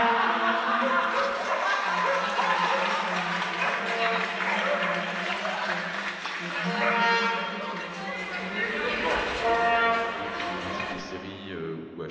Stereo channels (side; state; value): both; identical; correlation 1.00